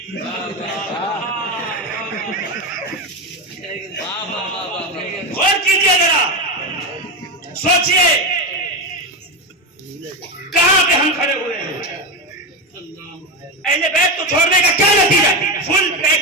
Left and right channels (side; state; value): both; normal; correlation 0.15